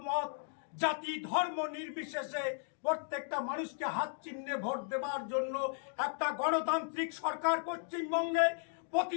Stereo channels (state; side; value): silent; right; 54 dB below the other